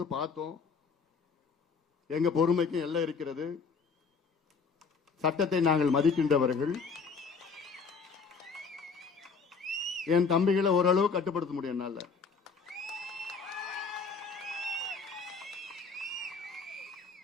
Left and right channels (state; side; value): quieter; right; 5.1 dB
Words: பார்த்தோம். எங்க பொறுமைக்கும் எல்லாம் இருக்கிறது. சட்டத்தை நாங்கள் மதிக்கின்றவர்கள். என் தம்பிகளை ஓரளவு கட்டுப்படுத்த முடியும் என்னால.